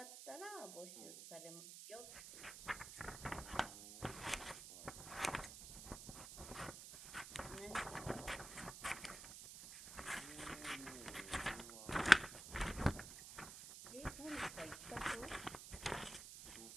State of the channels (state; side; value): noise; right; hiss, 11 dB below the sound